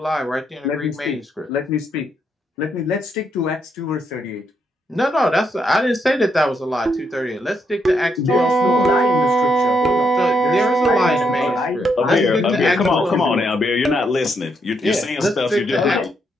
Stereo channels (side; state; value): both; normal; correlation 0.77